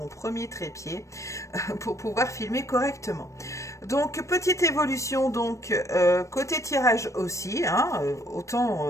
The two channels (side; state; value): right; late; 0.15 ms